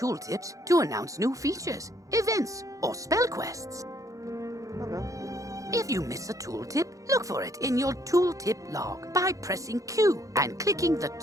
to announce new features, events, or spell quests. Okay. If you miss a tooltip, look for it in your tooltip log by pressing Q and clicking the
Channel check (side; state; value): left; late; 0.16 ms